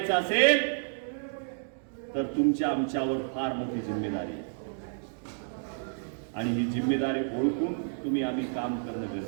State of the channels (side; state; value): left; silent; digital silence